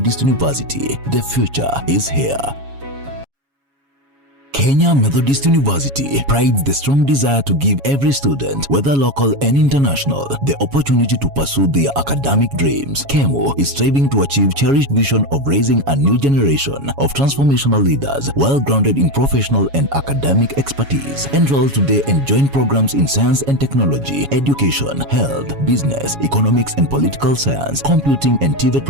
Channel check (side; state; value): left; late; 7.2 ms